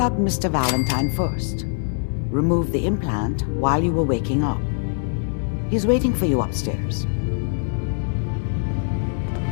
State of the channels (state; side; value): silent; right; 64 dB below the other